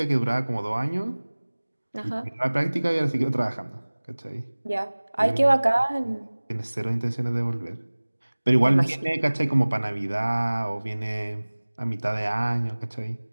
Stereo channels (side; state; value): both; inverted; correlation -1.00